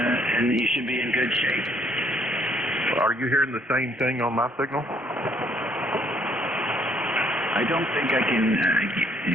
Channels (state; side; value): normal; both; correlation 0.65